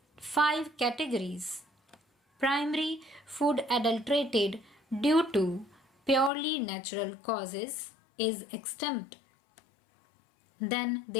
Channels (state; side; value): drops out; right; at 6.3 s